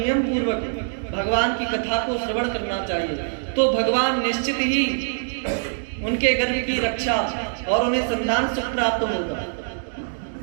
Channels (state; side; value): silent; left; digital silence